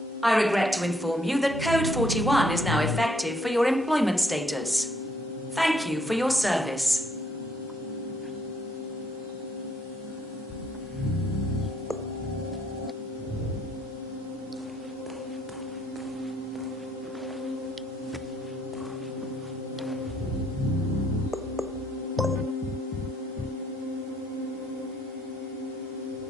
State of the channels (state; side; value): normal; both; correlation 0.69